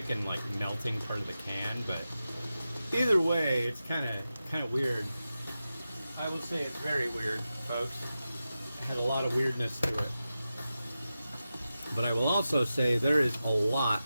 and like melting part of the can, but either way, it's kind of weird. I will say it's very weird, folks. It had a lot of weirdness to it. But I will also say there is a lot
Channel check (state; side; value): inverted; both; correlation -0.92